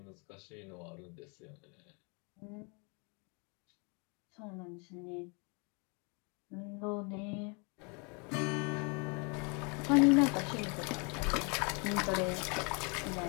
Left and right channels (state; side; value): quieter; right; 33.1 dB